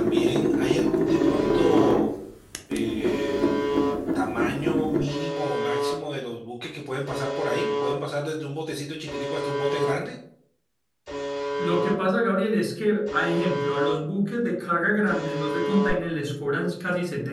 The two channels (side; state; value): both; identical; correlation 1.00